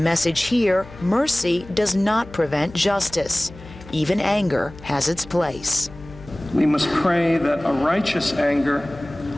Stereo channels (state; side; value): noise; left; hum, 18 dB below the sound